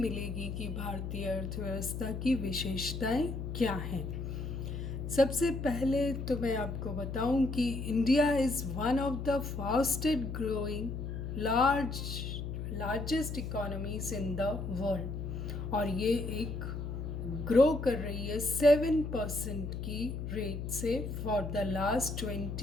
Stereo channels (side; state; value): left; noise; hum, 5 dB below the sound